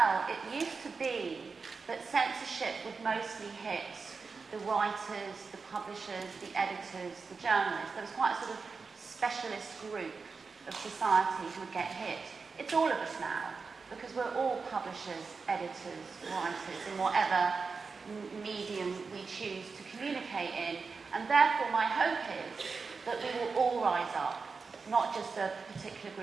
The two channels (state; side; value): quieter; left; 4.7 dB